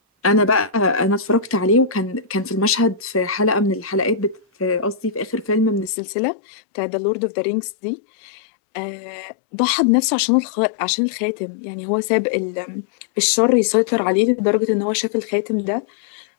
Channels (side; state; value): right; drops out; at 5.9 s